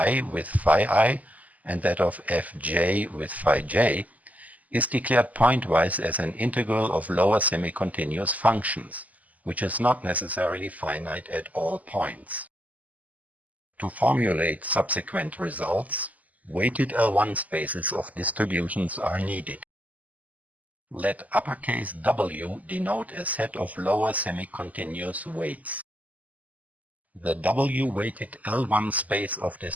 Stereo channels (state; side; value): late; left; 0.076 ms